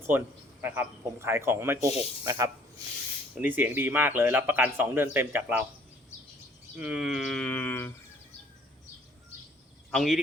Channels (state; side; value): normal; both; correlation 0.58